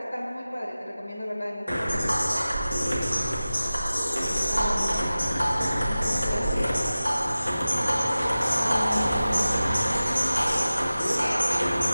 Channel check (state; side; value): inverted; both; correlation -0.96